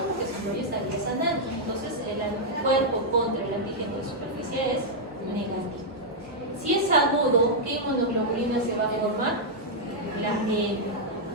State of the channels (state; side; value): normal; both; correlation -0.05